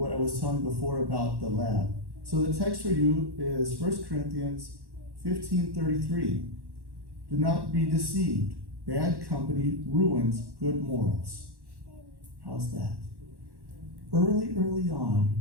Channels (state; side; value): late; left; 1.1 ms